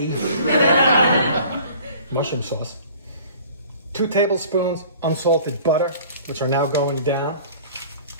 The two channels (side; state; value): both; inverted; correlation -0.48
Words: mushroom sauce. 2 tablespoons unsalted butter, which are now going down.